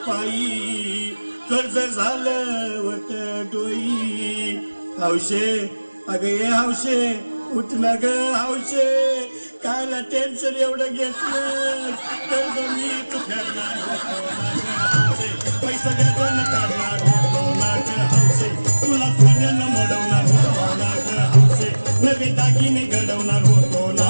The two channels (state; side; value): inverted; both; correlation -1.00